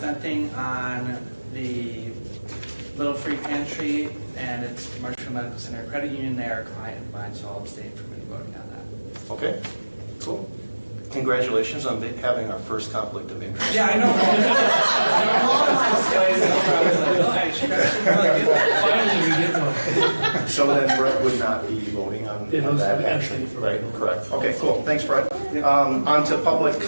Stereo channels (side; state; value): both; inverted; correlation -1.00